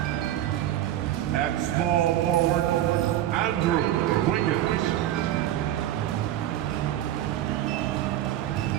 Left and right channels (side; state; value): left; quieter; 12.7 dB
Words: At small forward, Andrew Wiggins.